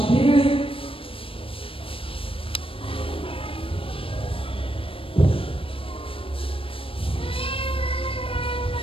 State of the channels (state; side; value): late; right; 0.26 ms